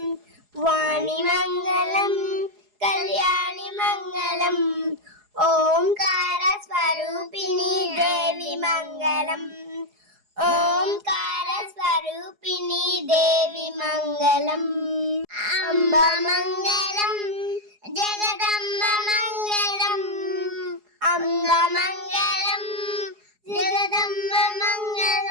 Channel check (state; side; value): late; left; 4.8 ms